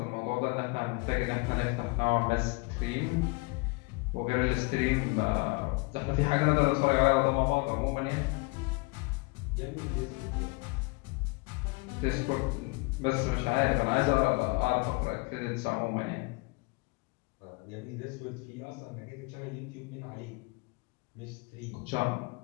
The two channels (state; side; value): quieter; right; 27.5 dB